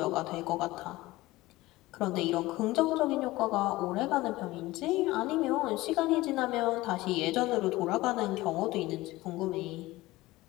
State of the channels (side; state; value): right; quieter; 18.8 dB